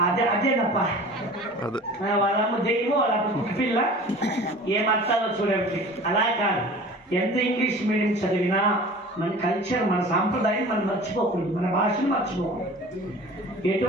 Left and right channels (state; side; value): normal; both; correlation 0.42